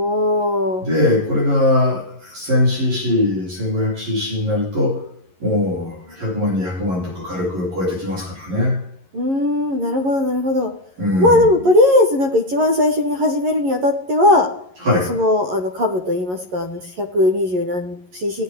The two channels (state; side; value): late; left; 11 ms